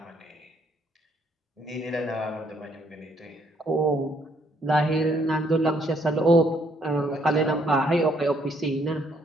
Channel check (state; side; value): normal; both; correlation 0.68